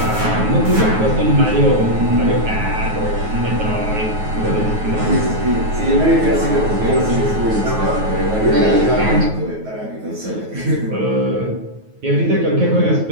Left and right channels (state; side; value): late; left; 9.3 ms